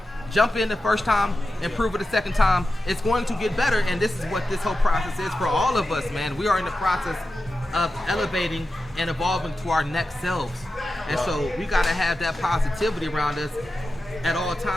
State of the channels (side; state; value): both; normal; correlation 0.92